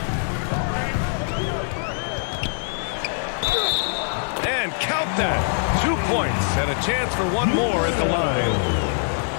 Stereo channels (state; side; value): silent; right; 60 dB below the other